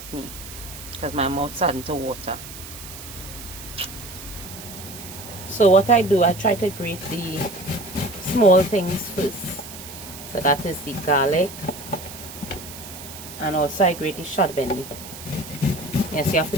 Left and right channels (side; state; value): right; noise; hiss, 13 dB below the sound